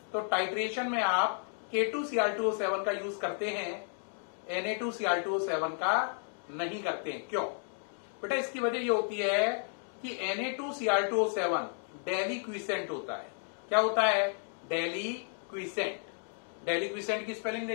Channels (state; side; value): silent; right; 56 dB below the other